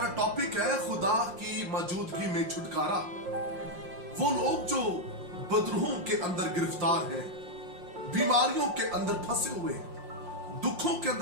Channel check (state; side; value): late; left; 5.6 ms